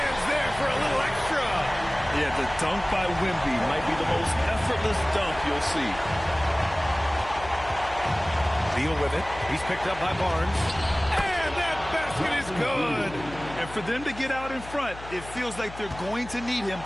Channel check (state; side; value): noise; left; hum, 15 dB below the sound